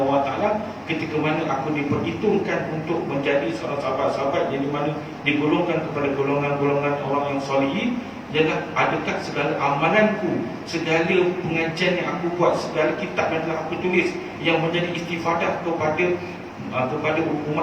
wa taala ketika mana aku diperhitungkan untuk menjadi seorang sahabat-sahabat yang dimana digolongkan kepada golongan-golongan orang yang solihin, ialah adakah segala amalanku, segala pengajian yang aku buat, segala kitab yang telah aku tulis yang menjadi istifadah kepada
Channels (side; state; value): both; identical; correlation 1.00